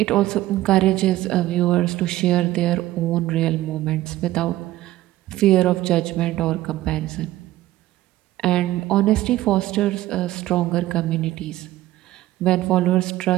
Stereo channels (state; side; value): quieter; left; 15.7 dB